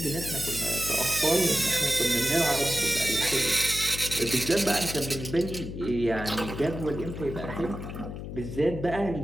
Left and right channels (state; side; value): noise; left; hum, 8 dB below the sound